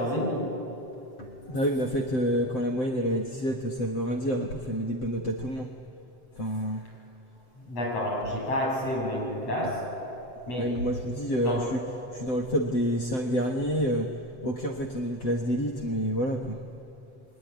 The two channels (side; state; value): right; late; 7.8 ms